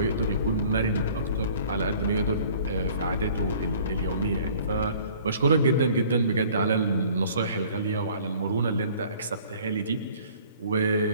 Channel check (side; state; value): both; inverted; correlation -0.52